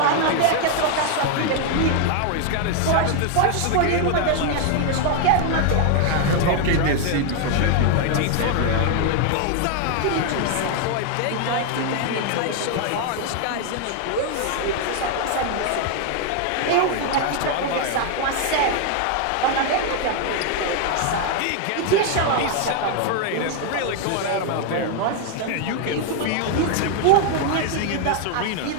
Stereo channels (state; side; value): different; both; correlation 0.00